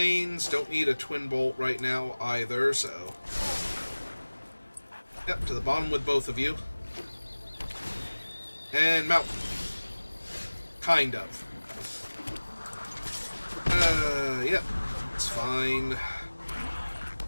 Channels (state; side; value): inverted; both; correlation -1.00